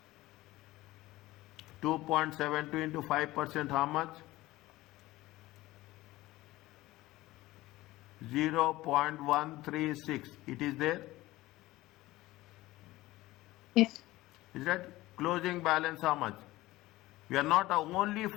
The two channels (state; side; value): quieter; right; 17.9 dB